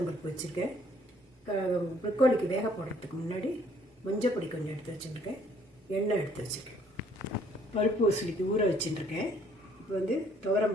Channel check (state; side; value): normal; both; correlation 0.63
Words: வச்சுருக்கேன். ப்ரொக்கோலிக்கு வேக போடுறதுக்கு முன்னாடி மஞ்சள் பொடி கொஞ்சம் எடுத்து வச்சுருக்கேன். எண்ணெய் எடுத்து வச்சுருக்கேன். பருப்பு உசிலிக்கு ஊற வச்சுருக்கேன். இப்போ துவரம்